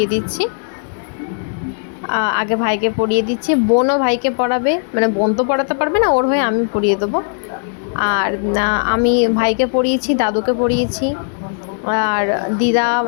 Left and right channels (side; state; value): right; silent; 65 dB below the other